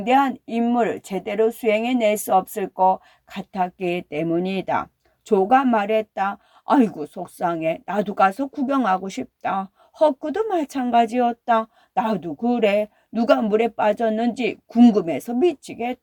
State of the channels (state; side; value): identical; both; correlation 1.00